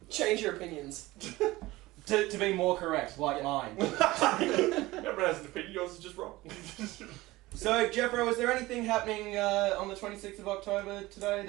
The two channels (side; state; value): left; quieter; 19.1 dB